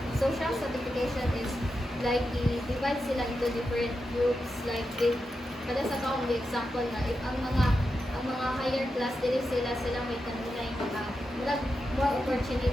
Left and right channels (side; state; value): both; normal; correlation 0.88